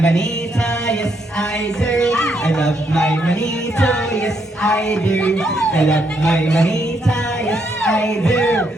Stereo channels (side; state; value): both; normal; correlation 0.76